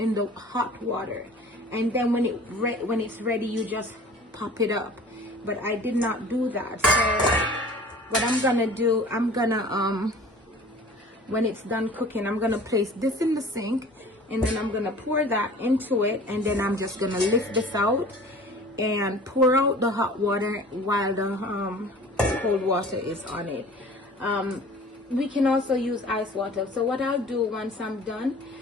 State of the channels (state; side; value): normal; both; correlation 0.45